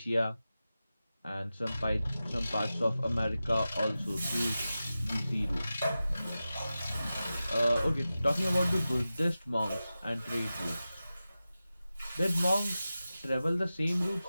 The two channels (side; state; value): both; inverted; correlation -0.94